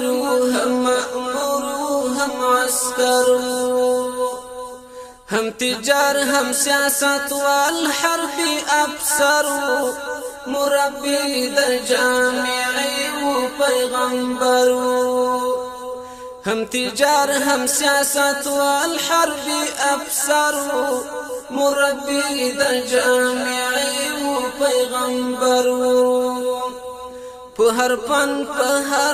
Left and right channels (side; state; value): both; identical; correlation 1.00